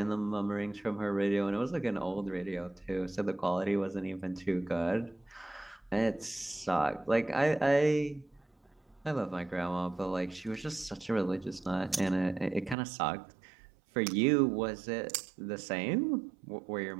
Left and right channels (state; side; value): drops out; left; at 12.8 s